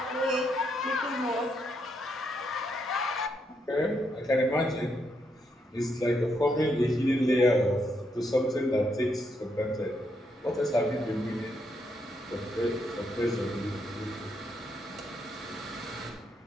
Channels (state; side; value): normal; both; correlation 0.78